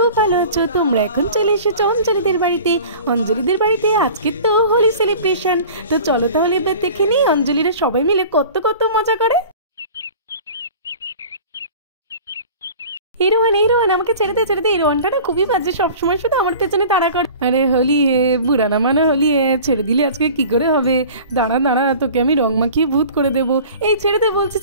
ভালো আছো। তোমরা এখন চলে এসেছো অঞ্জলিদের বাড়িতে। অঞ্জলিদের বাড়িতে আজকে তো হোলি সেলিব্রেশন। তো চলো তাহলে এবার দেখে নিই অঞ্জলিরা সবাই মিলে কত কত মজা করে। এই রোহান আমাকে ছেড়ে দে। এই রোহানটা না খুবই বাজে, সবসময় শুধু আমার পেছনে তাড়া করে। আরে হোলি হে বুড়ানা মানে হোলি হে, ছেড়ে দিলে আজকে কি করে হবে? দাঁড়া তোকে আমি রং মাখিয়ে ভূত করে দেবো। এই ছেড়ে দে বলছি,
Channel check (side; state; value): both; inverted; correlation -0.42